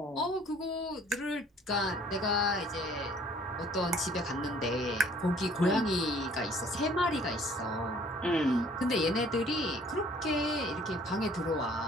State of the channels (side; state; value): both; normal; correlation 0.56